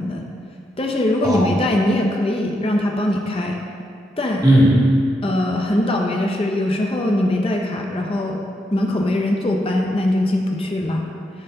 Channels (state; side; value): normal; both; correlation 0.82